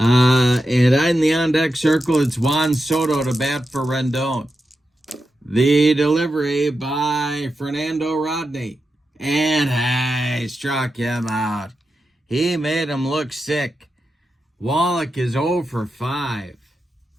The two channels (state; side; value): normal; both; correlation 0.89